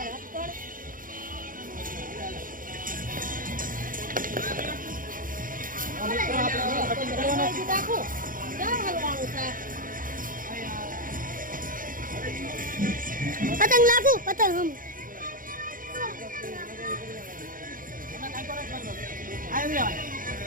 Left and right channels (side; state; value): left; late; 0.40 ms